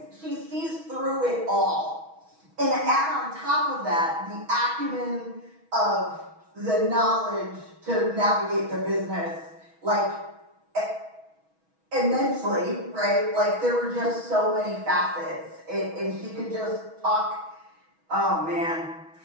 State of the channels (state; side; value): late; left; 6.2 ms